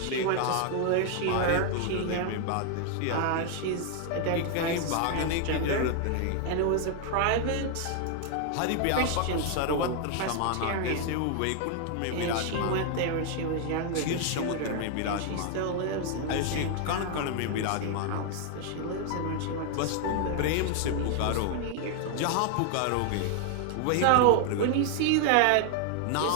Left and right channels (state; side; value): different; both; correlation 0.00